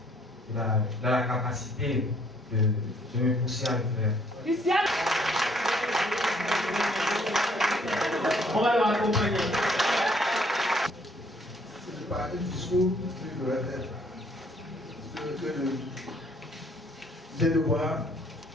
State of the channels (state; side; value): normal; both; correlation 0.64